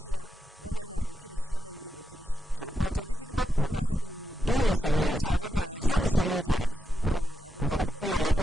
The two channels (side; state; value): both; normal; correlation 0.85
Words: wannan na dauke da shi wannan bai dauke da shi wato duk hidima ku kuna haɗin dole sai mun yi tare da dole sai mun yi tare da su hukumar